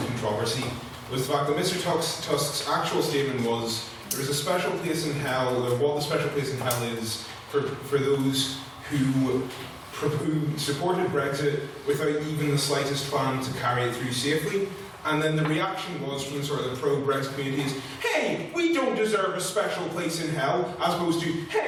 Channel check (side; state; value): both; identical; correlation 1.00